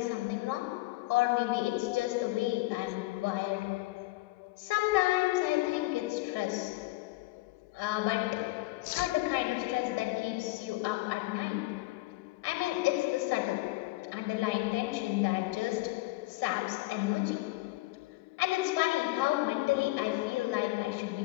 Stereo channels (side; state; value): right; quieter; 20.9 dB